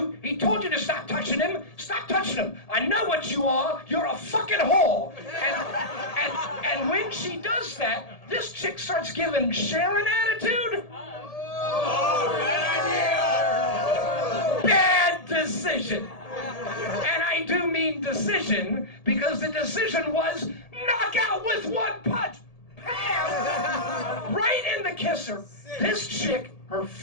he told you to stop touching him. Stop touching him. I know what you are. You're a fucking whore." And when she does that, this chick starts giving Sharon attitude. Bad decision. And I do mean decision, because the decision was knock out with one punch. Bam! Right in the kisser. This chick, her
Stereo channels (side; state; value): right; late; 1.8 ms